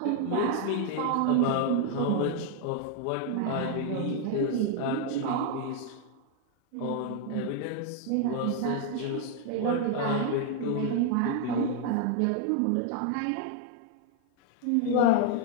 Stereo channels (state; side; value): different; both; correlation 0.00